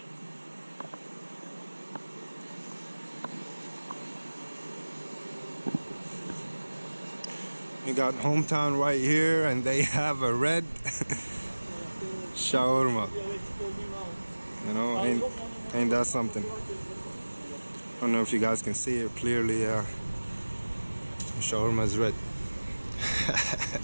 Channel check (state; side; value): inverted; both; correlation -1.00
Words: You got Hometown right here, and they have a red shawarma. You know, ain't that something? I don't know if you guys can see it clearly. Shawarma is red.